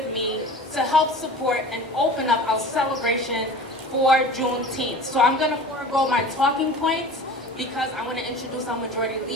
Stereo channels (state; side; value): normal; both; correlation 0.39